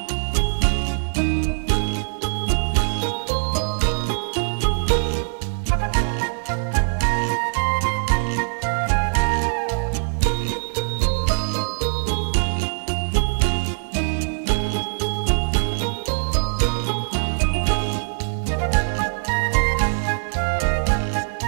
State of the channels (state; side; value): silent; left; 64 dB below the other